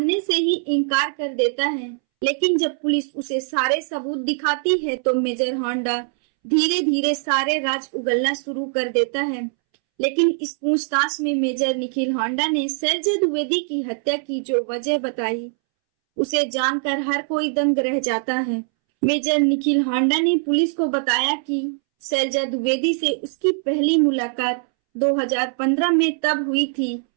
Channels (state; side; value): silent; left; 64 dB below the other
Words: से ही इनकार कर देता है, लेकिन जब पुलिस उसे सारे सबूत दिखाती है तो मेजर होंडा धीरे धीरे सारे राज उगलना शुरू कर देता है। लेकिन इस पूछताछ में मेजर निखिल होंडा ने शैलजा द्विवेदी की हत्या की जो वजह बताई उसे जानकर हर कोई दंग रह जाता है। मेजर निखिल होंडा ने पुलिस को बताया कि शैलजा द्विवेदी से उसकी पहली मुलाकात 2015 में तब हुई थी।